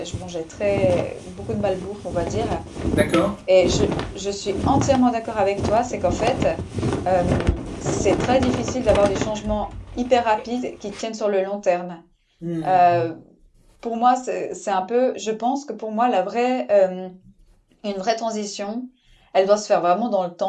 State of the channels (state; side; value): identical; both; correlation 1.00